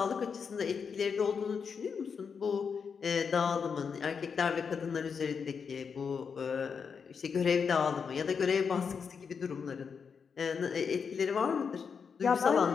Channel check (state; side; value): quieter; right; 6.1 dB